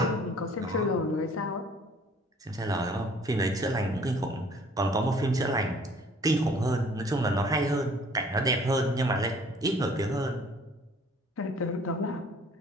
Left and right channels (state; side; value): normal; both; correlation 0.55